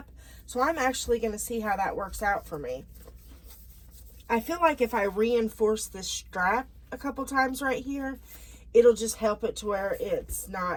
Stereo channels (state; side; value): identical; both; correlation 1.00